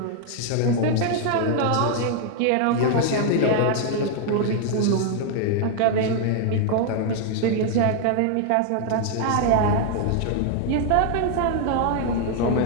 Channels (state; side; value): different; both; correlation 0.00